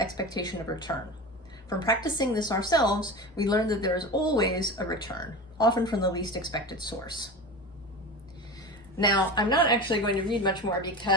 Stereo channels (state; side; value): normal; both; correlation 0.29